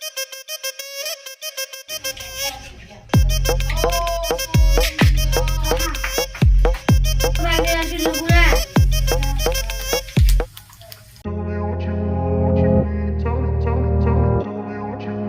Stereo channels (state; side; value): identical; both; correlation 1.00